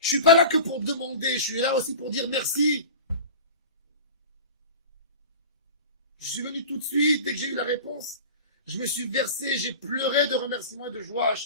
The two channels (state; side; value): inverted; both; correlation -0.35